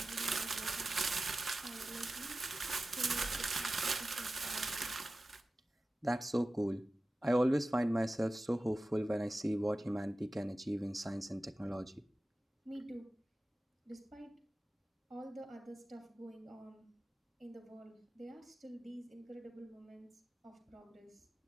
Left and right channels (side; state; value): both; normal; correlation 0.95